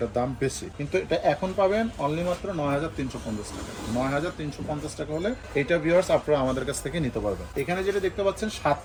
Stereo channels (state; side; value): identical; both; correlation 1.00